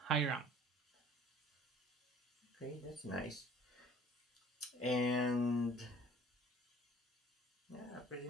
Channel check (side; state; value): both; normal; correlation 0.52